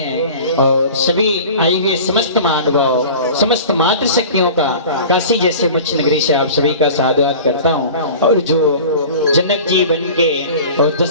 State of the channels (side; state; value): both; inverted; correlation -0.39